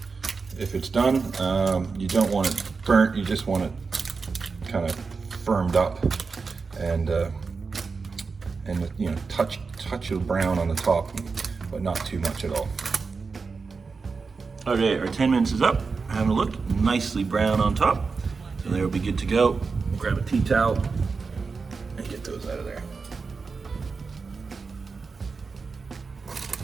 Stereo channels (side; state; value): left; quieter; 4.7 dB